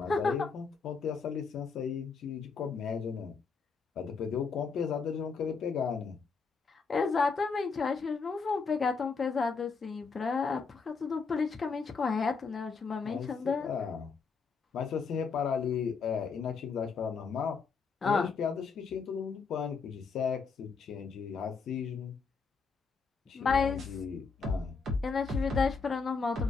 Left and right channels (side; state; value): right; quieter; 5.1 dB